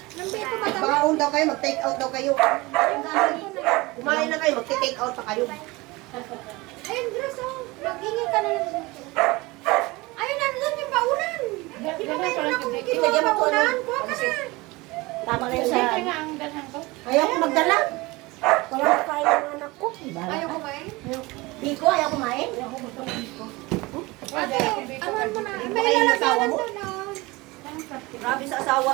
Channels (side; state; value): left; quieter; 22.6 dB